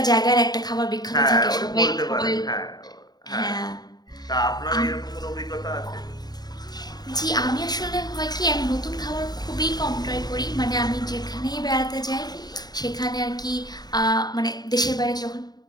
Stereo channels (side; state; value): right; late; 0.20 ms